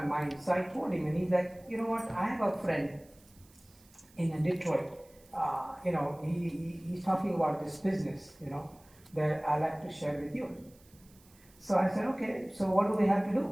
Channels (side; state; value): right; noise; hiss, 28 dB below the sound